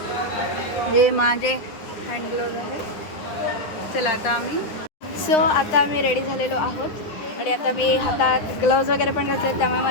हे माझे हँड ग्लोव्ज आहेत. चला आता आम्ही सो आता आम्ही रेडी झालेलो आहोत आणि आता मी हातात ग्लव्ज वगैरे पण घातले, त्यामुळे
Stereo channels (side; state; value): right; late; 9.9 ms